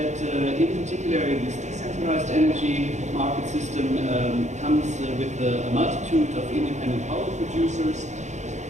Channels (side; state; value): left; late; 0.34 ms